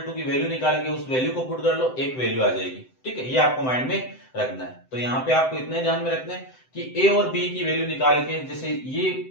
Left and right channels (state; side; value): late; right; 7.8 ms